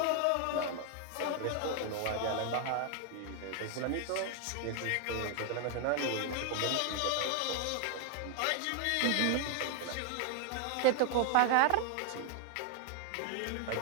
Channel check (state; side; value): different; both; correlation 0.00